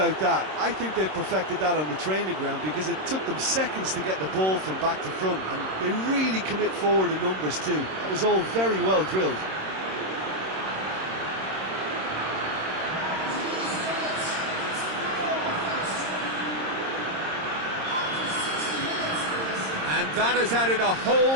that, I think they've perfected that on the training ground, because it took them seconds to get the ball from back to front, and they really commit forward in numbers too. That was all very well drilled. And that has added a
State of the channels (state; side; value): late; left; 26 ms